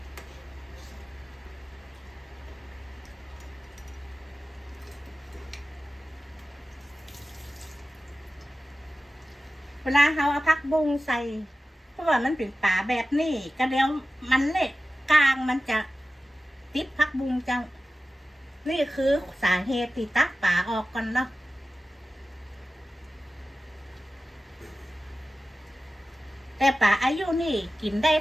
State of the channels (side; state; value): both; normal; correlation 0.95